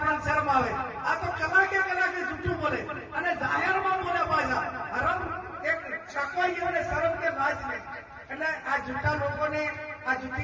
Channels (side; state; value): both; identical; correlation 1.00